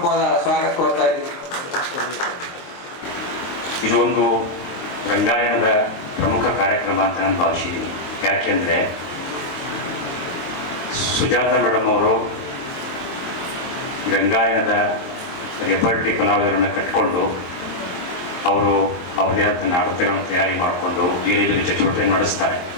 ಸ್ವಾಗತ ಕೊಡ್ತಾ ಇದ್ದೀನಿ. ಇದು ಒಂದು ರಂಗಾಯಣದ ಪ್ರಮುಖ ಕಾರ್ಯಕ್ರಮ ಅಂತ ನಾನು ಭಾವಿಸಿದ್ದೀನಿ. ಯಾಕೆಂದರೆ ಸುಜಾತ ಮೇಡಮ್ ಅವರು ರಂಗಾಯಣದ ರೆಪರ್ಟರಿ ಕಲಾವಿದರನ್ನು ಕಟ್ಕೊಂಡು ಅವರು ಅವರದೇ ಆದ ನಾಟಕಗಳನ್ನು ತಯಾರಿ ಮಾಡಿಕೊಂಡು ಬೇರೆ ಬೇರೆ ಚಟುವಟಿಕೆ ನಡೆಸ್ತಾರೆ.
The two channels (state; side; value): late; right; 22 ms